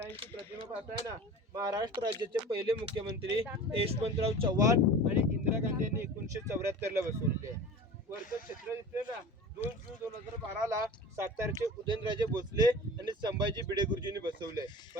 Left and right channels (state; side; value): normal; both; correlation 0.37